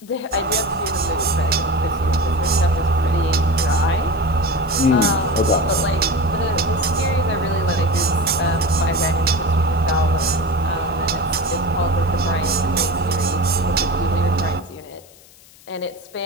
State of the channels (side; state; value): left; noise; hiss, 25 dB below the sound